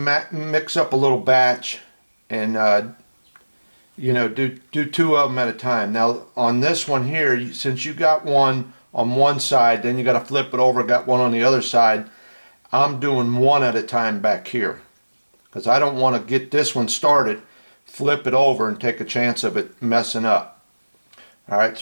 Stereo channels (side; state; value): both; inverted; correlation -1.00